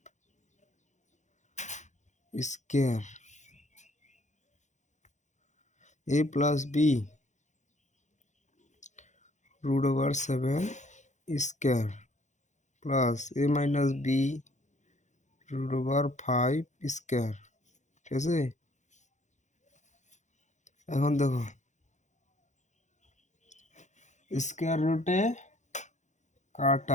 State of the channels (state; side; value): late; right; 0.35 ms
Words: square। a plus b √7 square plus a minus b √5 square। ঠিক আছে, এখন দেখো স্কয়ার রুটে